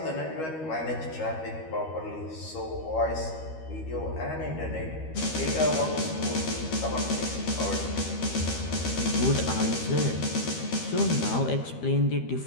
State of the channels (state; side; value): late; right; 13 ms